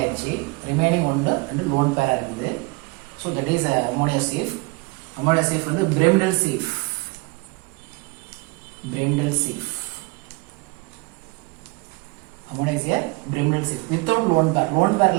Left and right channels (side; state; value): left; quieter; 26.6 dB